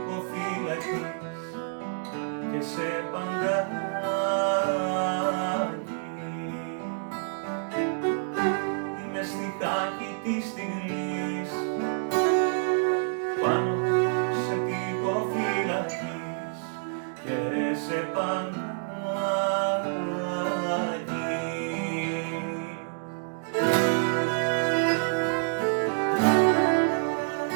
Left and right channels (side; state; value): left; silent; digital silence